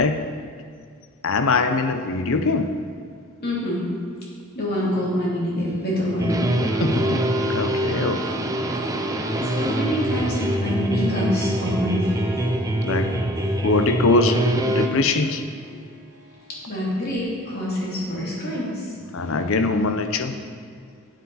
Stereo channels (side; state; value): both; normal; correlation 0.46